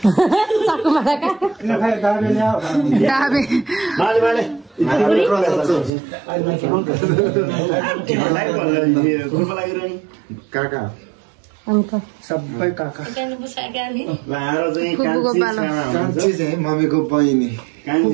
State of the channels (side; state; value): left; drops out; at 5.9 s